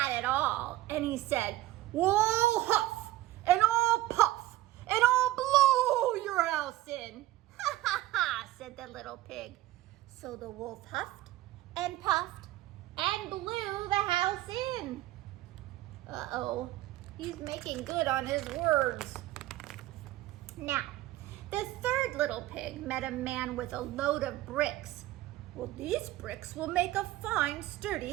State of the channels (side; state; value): left; quieter; 16.2 dB